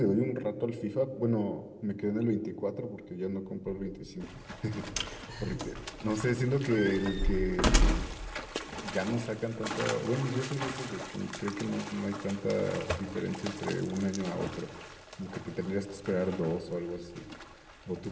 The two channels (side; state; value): both; identical; correlation 1.00